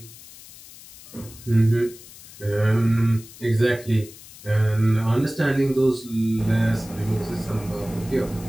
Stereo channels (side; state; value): left; noise; hiss, 19 dB below the sound